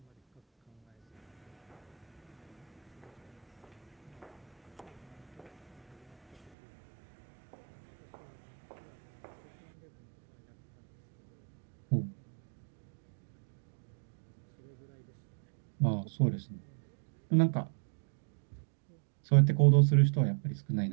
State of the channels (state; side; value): drops out; left; at 6.5 s